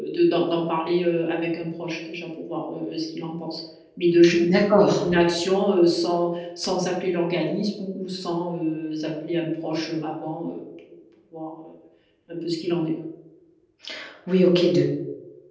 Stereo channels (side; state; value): both; identical; correlation 1.00